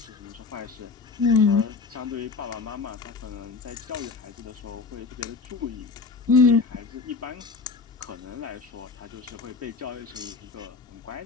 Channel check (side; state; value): right; quieter; 4.6 dB